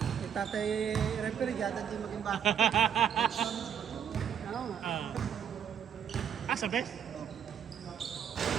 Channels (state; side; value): quieter; left; 8.5 dB